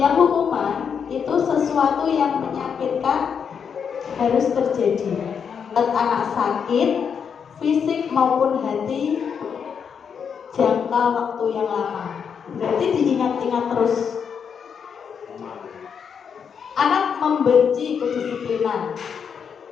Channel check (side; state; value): right; quieter; 7.0 dB